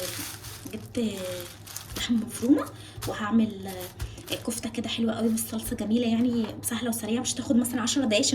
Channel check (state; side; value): identical; both; correlation 1.00